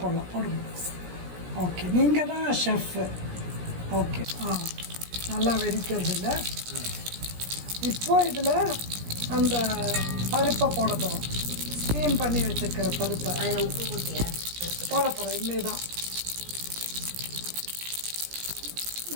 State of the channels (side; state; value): left; late; 17 ms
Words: ஓகே, நீங்கள் தான் ஷெஃப். ஓகே, நல்லா வெடிக்கிறது இல்லை. இப்போ இதில் அந்த பருப்பை போட போகிறோம். ஸ்டீம் பண்ணி வச்சுருக்கிற பருப்பை உப்பு போட்டியா போட போகிறோம். இனிமே தான்